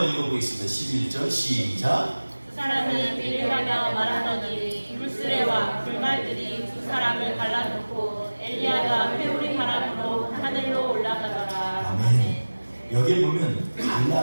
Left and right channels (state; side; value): inverted; both; correlation -1.00